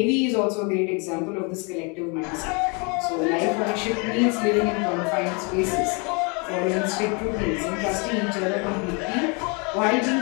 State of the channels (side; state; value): right; quieter; 32.7 dB